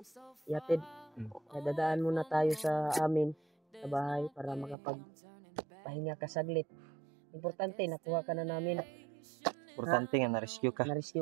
yatid. Kaya dadaan muna tayo sa amin sa bahay para makapagpahinga ka saglit. Importante, nakuha ka na namin. Importante nga na-rescue ka. Na-rescue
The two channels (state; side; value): drops out; left; at 4.8 s